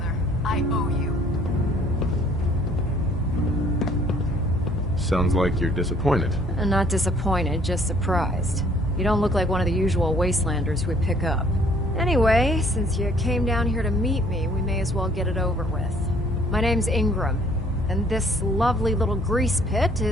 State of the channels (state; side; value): normal; both; correlation 0.59